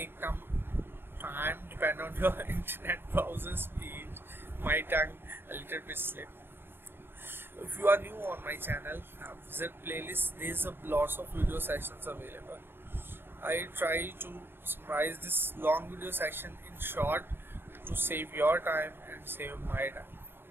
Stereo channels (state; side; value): late; left; 0.10 ms